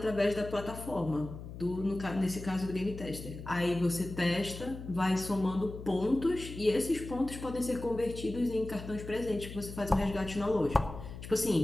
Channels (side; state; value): left; noise; hum, 11 dB below the sound